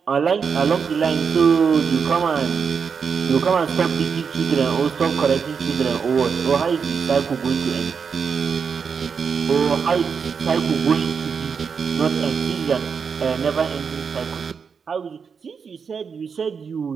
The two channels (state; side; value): quieter; left; 6.1 dB